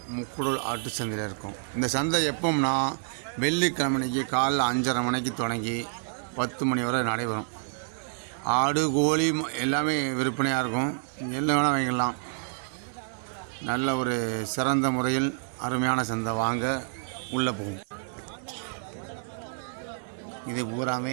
முக்குடல் ஆட்டு சந்தையில் இருக்கோம். இந்த சந்தை எப்போம்னா வெள்ளிக்கிழமைக்கு காலைல 5:30 மணிக்கு தொடங்கி 10 மணி வரை நடைபெறும். ஆடு கோழி எல்லாமே விற்பனையாக இருக்கும். என்ன வேணால் வாங்கிடலாம். நல்ல ஒரு சிறந்த முறையில் அருமையான சந்தை. வாங்க உள்ளே போகும். இது பூராமே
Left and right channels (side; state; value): left; silent; 59 dB below the other